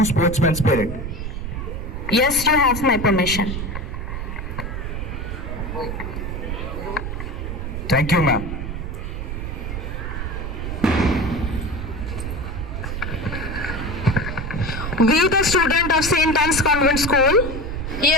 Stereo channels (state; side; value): noise; right; rumble, 5 dB below the sound